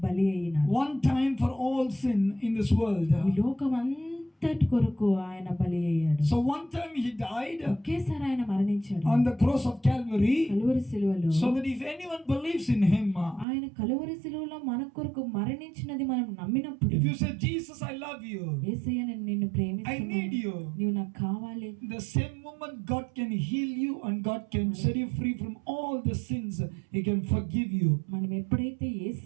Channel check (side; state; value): left; drops out; at 13.5 s